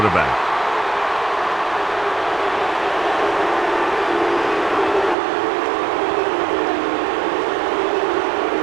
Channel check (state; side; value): drops out; left; at 5.2 s